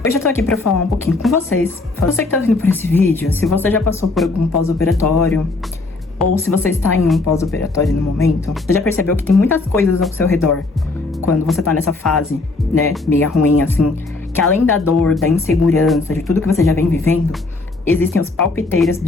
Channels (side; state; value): right; quieter; 3.4 dB